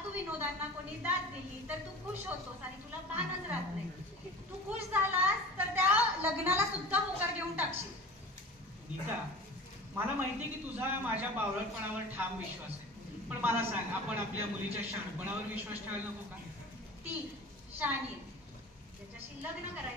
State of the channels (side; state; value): both; normal; correlation 0.37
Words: विनोदांना कोणी दाद दिली तर तू खुश होतोस आणि तुला भानच राहत नाही. तू खुश झालास तर त्या लग्नाला सुद्धा होकार घेऊन टाकशील. नीता मला माहितीये की तुझा माझ्या बावळटपणावर ठाम विश्वास आहे, पण मला सांग, आपण आपल्या मुलीच्या शहाणपणावर विश्वास ठेवायला नको का? ती शहाणी आहे, ज्याच्याशी लग्न